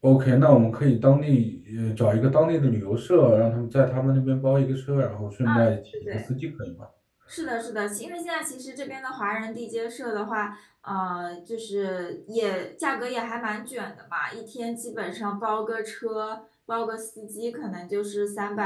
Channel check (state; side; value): identical; both; correlation 1.00